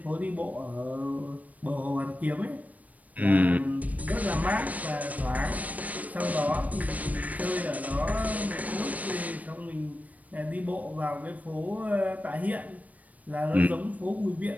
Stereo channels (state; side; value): late; left; 0.072 ms